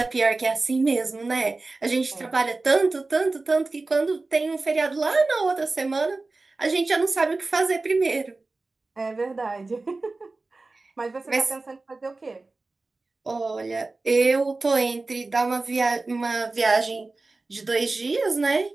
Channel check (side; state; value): left; quieter; 3.4 dB